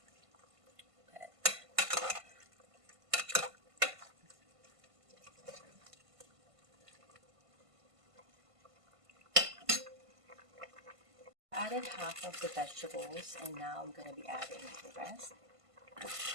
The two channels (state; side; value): late; left; 1.5 ms